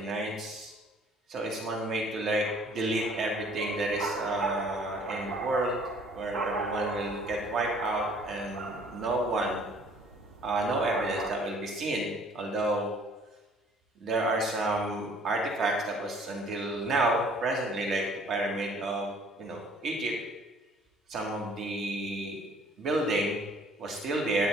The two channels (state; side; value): normal; both; correlation 0.56